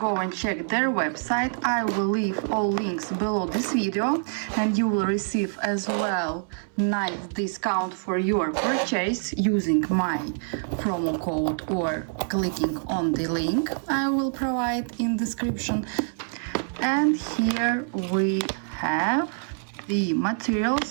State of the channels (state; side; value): silent; left; 61 dB below the other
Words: and check their website. I will leave all links below this video, and you will receive as well nice discount for your purchase using my promo code or clicking on the link I will provide in description. And here we have the